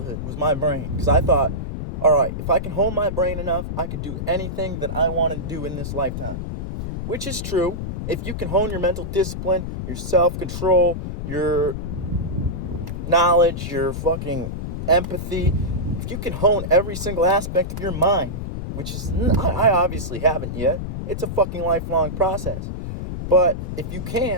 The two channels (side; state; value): left; noise; rumble, 5 dB below the sound